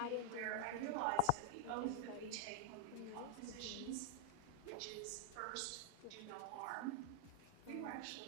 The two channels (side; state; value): both; different; correlation 0.00